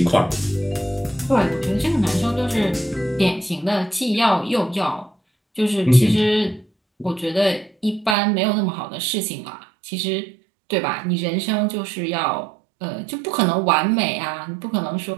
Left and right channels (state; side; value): drops out; left; at 8.2 s